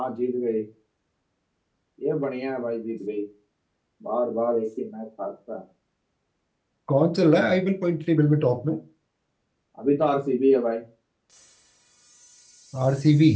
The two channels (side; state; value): both; identical; correlation 1.00